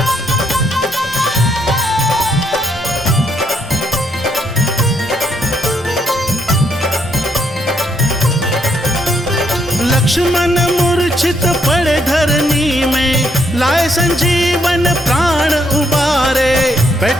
लक्ष्मण मूर्छित पड़े धरनी में, लाए संजीवन प्राण उबारे।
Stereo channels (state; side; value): normal; both; correlation 0.73